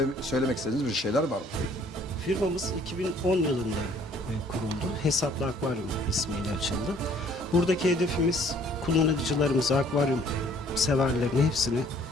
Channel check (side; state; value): both; normal; correlation 0.59